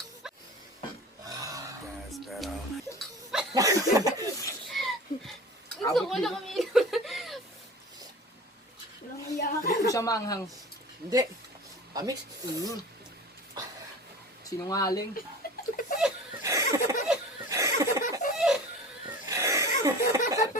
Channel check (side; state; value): both; normal; correlation 0.37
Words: Gusto ko na kami. Walang iyak. Hindi ko siya maanghang. Hindi. Tamis. Sinungaling.